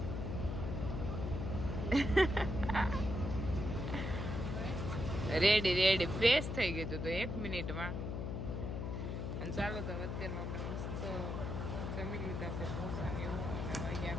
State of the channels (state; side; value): noise; left; hum, 3 dB below the sound